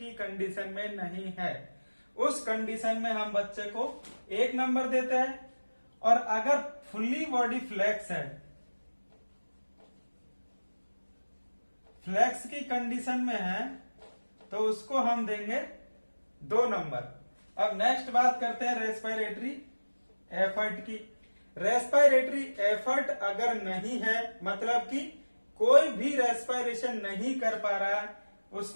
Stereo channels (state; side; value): inverted; both; correlation -1.00